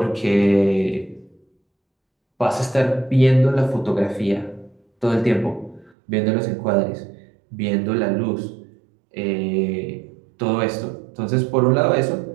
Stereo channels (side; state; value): left; drops out; at 5.9 s